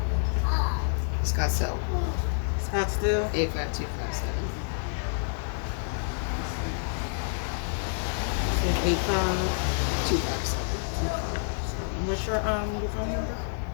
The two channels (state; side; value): silent; right; digital silence